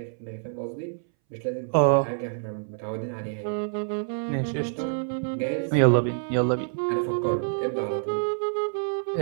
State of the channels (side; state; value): left; silent; 60 dB below the other